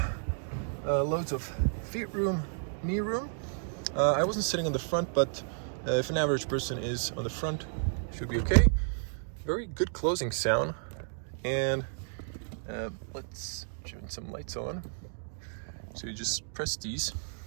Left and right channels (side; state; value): left; silent; digital silence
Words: loads of feet room, knee room. I wasn't sitting on the front, but if an average person is on the front, should be okay. Very good closing sound, and let's turn some lights on. So you just press these,